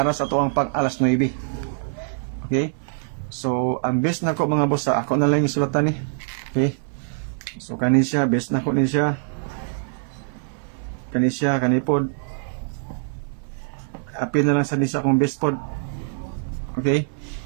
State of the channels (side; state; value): left; silent; 56 dB below the other